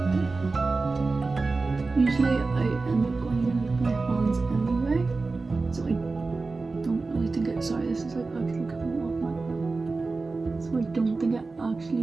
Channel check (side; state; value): left; quieter; 3.8 dB